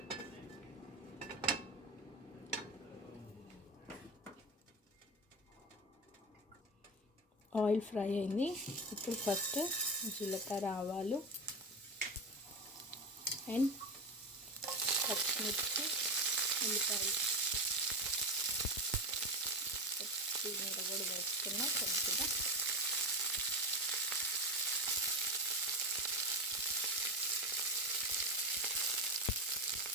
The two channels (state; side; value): normal; both; correlation 0.19